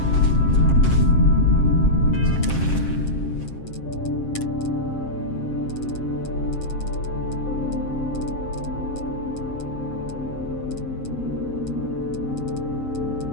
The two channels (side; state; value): right; late; 7.5 ms